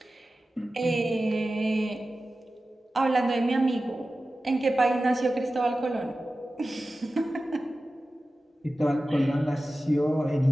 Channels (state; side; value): normal; both; correlation 0.95